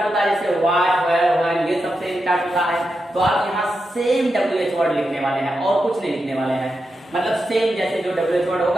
होता है, जैसे व्हाट, वेयर, व्हेन, ये सब से स्टार्ट होता है, तो आप यहाँ सेम WH वर्ड लिखने वाले हैं और कुछ नहीं लिखने वाले हैं। मतलब सेम जैसे जो WH वर्ड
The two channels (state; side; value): normal; both; correlation 0.87